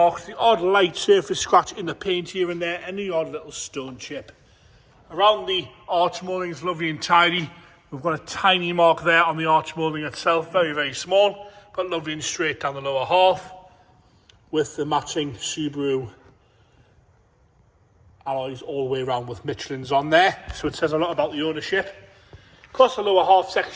the odd light surface scratch in the paint here and there, and the odd little stone chip. Around the arch moulding is lovely and tidy. We've got a tiny mark there on the arch moulding itself, very, very small, but lovely and straight down the lower half, with the matching Subaru alloys all the way around with Michelin's on there. So it says a lot about the ownership. Across the lower half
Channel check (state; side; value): identical; both; correlation 1.00